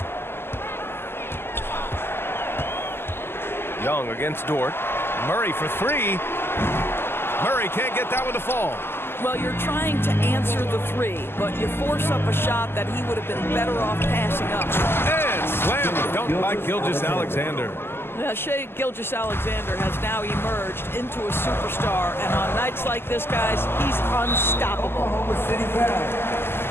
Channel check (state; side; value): late; right; 0.11 ms